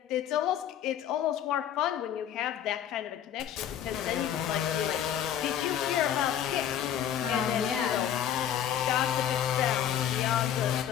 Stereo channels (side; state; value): right; quieter; 10.0 dB